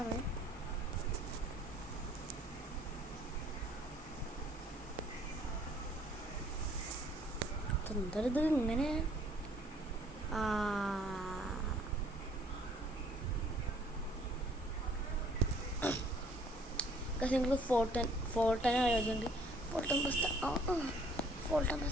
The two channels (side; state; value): both; normal; correlation 0.59